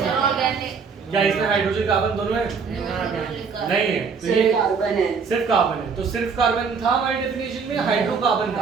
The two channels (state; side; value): quieter; left; 5.5 dB